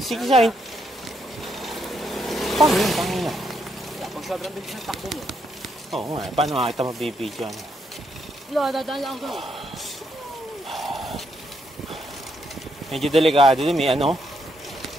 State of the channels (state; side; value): normal; both; correlation 0.77